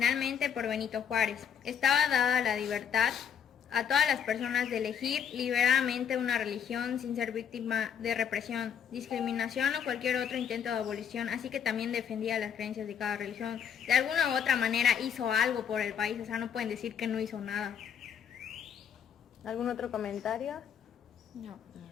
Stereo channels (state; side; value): quieter; right; 8.1 dB